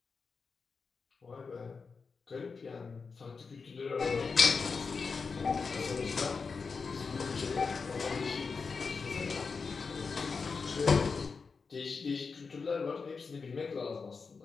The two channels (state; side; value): quieter; right; 4.9 dB